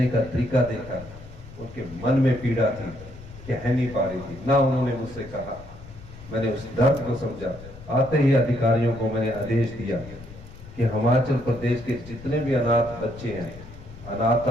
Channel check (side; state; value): left; noise; rumble, 17 dB below the sound